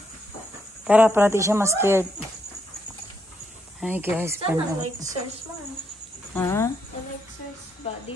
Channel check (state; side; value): normal; both; correlation 0.77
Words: Tara, para di siya ma-scared. Hi guys, Sana burn out. like Sir's man. Ha? I like Sir's body